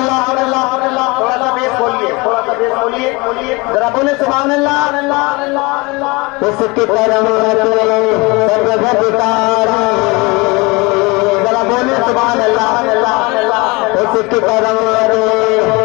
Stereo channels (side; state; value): right; quieter; 25.7 dB